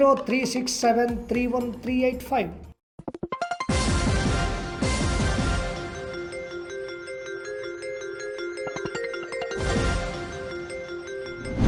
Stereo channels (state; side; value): identical; both; correlation 1.00